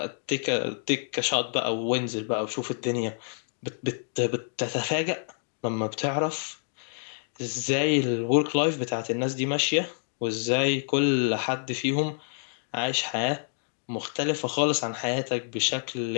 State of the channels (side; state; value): right; silent; digital silence